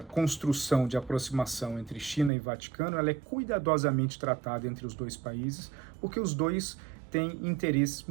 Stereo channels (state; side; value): drops out; left; at 2.3 s